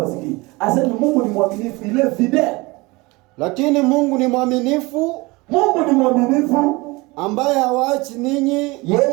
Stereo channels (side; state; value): left; quieter; 23.8 dB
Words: Asema Mungu ni mwaminifu, ile fidel. Lakini Mungu ni mwaminifu. Mungu ni mwaminifu ambaye hawaachi ninyi.